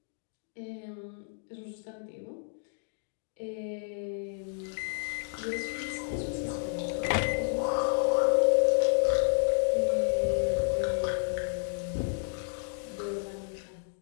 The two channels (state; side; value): silent; right; digital silence